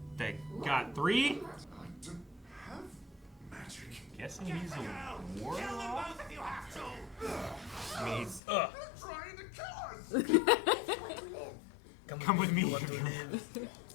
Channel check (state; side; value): drops out; right; at 8.4 s